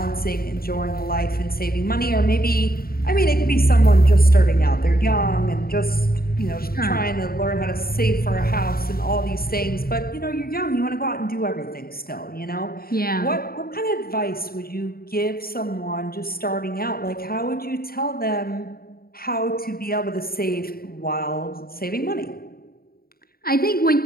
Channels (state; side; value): late; right; 0.43 ms